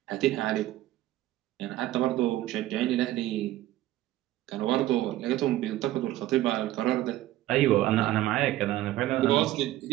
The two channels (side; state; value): left; quieter; 14.9 dB